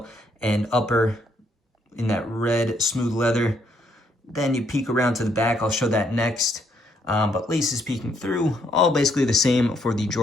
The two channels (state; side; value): normal; both; correlation 0.71